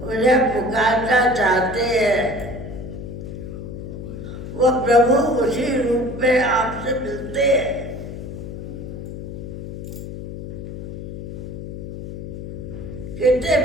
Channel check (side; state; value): left; noise; hum, 9 dB below the sound